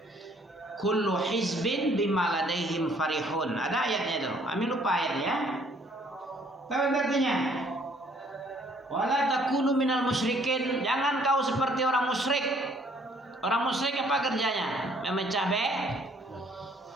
kullu hizbin bima ladaihim farihun. Ada ayatnya itu. Amin lupa ayatnya. Tahu artinya? Wala takunu minal musyrikin, jangan kau seperti orang musyrik. Orang musyrik apa kerjanya? Memecah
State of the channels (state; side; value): normal; both; correlation 0.62